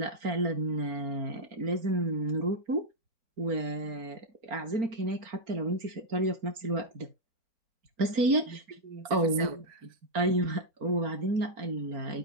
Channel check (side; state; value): left; late; 4.4 ms